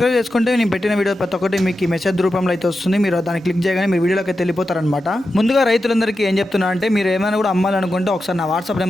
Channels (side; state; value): both; normal; correlation 0.90